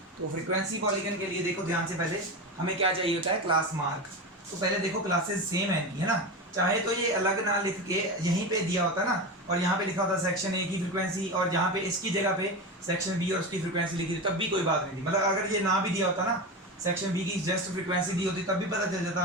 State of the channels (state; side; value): normal; both; correlation 0.22